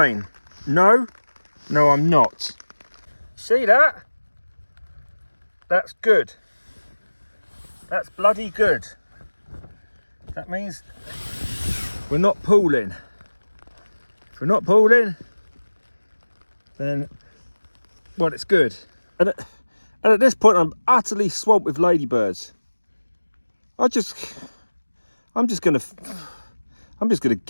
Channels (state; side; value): inverted; both; correlation -1.00